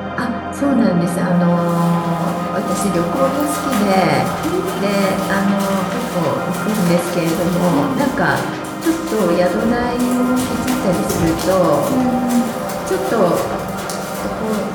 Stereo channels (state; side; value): identical; both; correlation 1.00